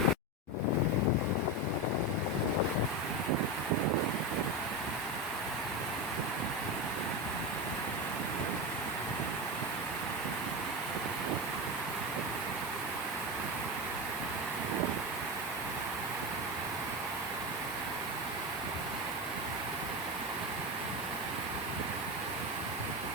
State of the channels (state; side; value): normal; both; correlation 0.17